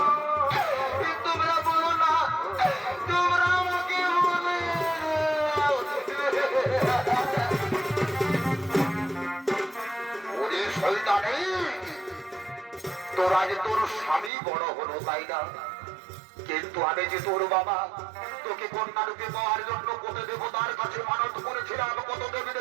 তোমরা বলো না, তোমরা আমাকে বলে। ওরে শয়তানি, তোর আজ তোর স্বামী বড় হলো তাই না? কিন্তু আমি যে তোর বাবা, তোকে কন্যা রূপে পাওয়ার জন্য কত দেবতার কাছে মানত করেছিলাম, কত দেবী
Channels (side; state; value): left; drops out; at 14.3 s